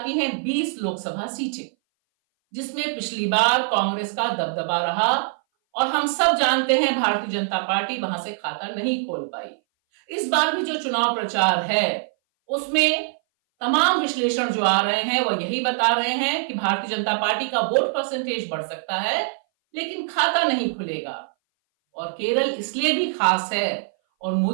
हैं 20 लोकसभा सीटें, जिसमें पिछली बार कांग्रेस का दबदबा रहा और हम सब जानते हैं भारतीय जनता पार्टी वहां से खाता नहीं खोल पाई। इस बार भी जो चुनाव प्रचार है उसमें तमाम विश्लेषण जो आ रहे हैं वह यही बता रहे हैं कि भारतीय जनता पार्टी का वोट परसेंटेज बढ़ सकता है, लेकिन खाता नहीं खुलेगा। और केरल इसलिए भी खास है और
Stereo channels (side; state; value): left; silent; 59 dB below the other